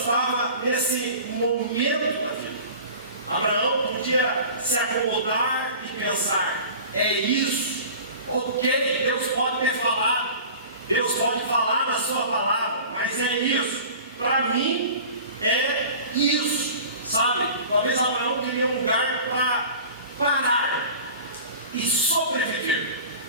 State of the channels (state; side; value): inverted; both; correlation -0.40